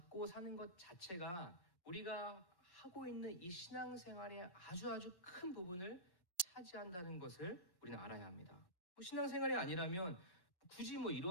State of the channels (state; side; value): late; right; 1.1 ms